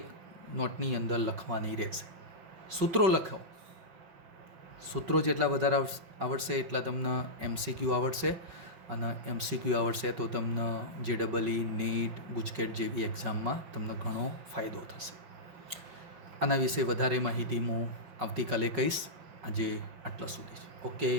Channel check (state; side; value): late; left; 5.3 ms